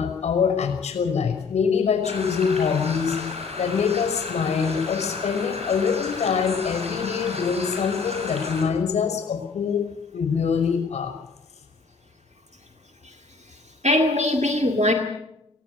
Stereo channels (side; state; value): right; quieter; 4.8 dB